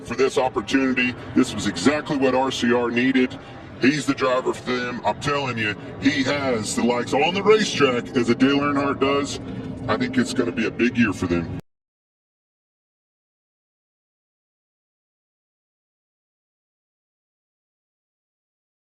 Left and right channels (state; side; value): identical; both; correlation 1.00